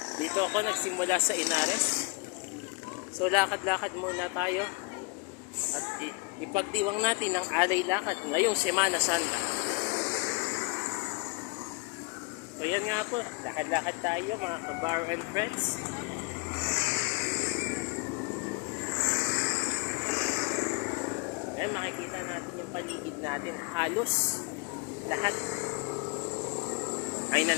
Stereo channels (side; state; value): right; quieter; 29.8 dB